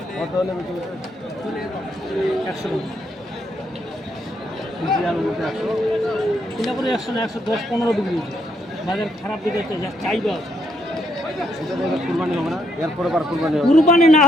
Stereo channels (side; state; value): both; normal; correlation 0.75